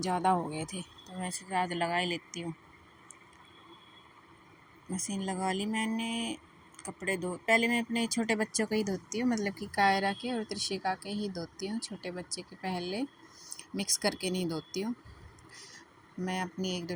हो गए थे, तो मैं सोचा आज लगा ही लेती हूँ। मशीन लगा ली मैंने। कपड़े धो पहले मैं अपने छोटे बच्चों के ही धोती हूँ, मतलब कि कायरा के और त्रिशिका के ही धोती हूँ। छोटे बच्चे के पहले मिक्स करके नहीं धोती हूँ। मैं अपनी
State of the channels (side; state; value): both; identical; correlation 1.00